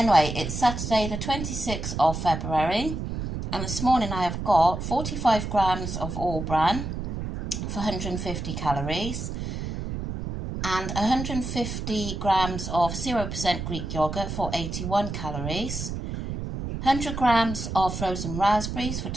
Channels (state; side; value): noise; right; rumble, 5 dB below the sound